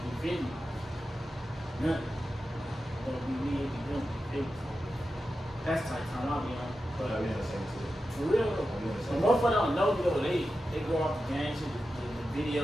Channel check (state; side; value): normal; both; correlation 0.91